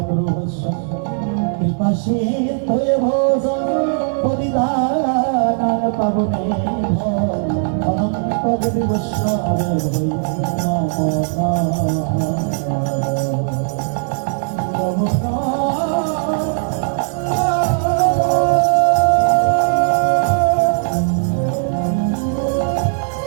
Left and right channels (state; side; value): silent; left; 67 dB below the other